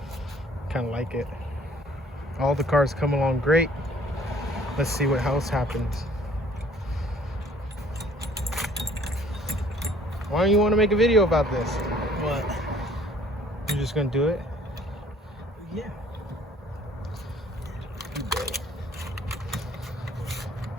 Kind of like it. All the cars come along great. Let's see what else happens. Why don't you want to make a video about this? What? You're just gonna do it? Yeah.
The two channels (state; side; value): normal; both; correlation 0.56